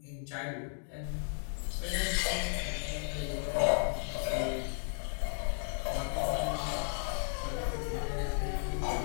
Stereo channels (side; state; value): right; silent; digital silence